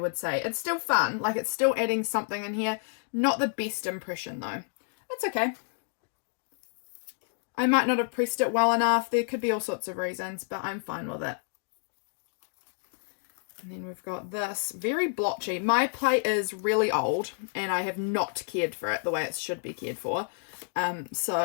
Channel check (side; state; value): right; silent; 58 dB below the other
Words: say. It's still fun, like it's still adding something in here. Not the best impression though. It's okay. I might not have pressed it well enough. There could be all sorts of reasons, but I'm fine with it. And then we've got this, very blotchy. My plate is really old and I have not cared for it the way it should be cared for.